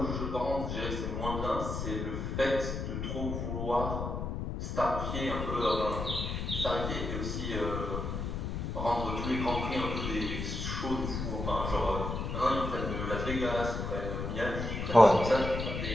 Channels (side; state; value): left; noise; rumble, 3 dB below the sound